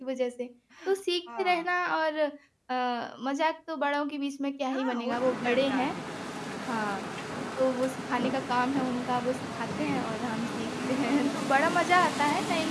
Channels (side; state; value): both; identical; correlation 1.00